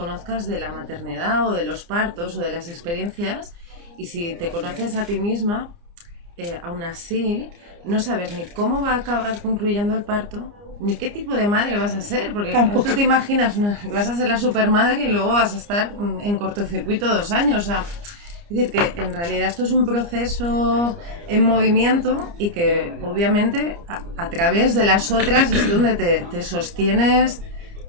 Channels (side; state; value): left; late; 29 ms